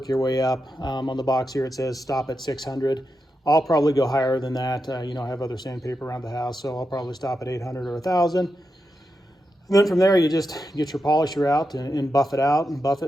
your way up. On the box here it says stop at 600. I'll probably go higher than that. You know, I have other sandpaper around the house, so I'll probably stop at 800 or 1,000. And then from there you just get your polisher out and buff it out and buff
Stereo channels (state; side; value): normal; both; correlation 0.87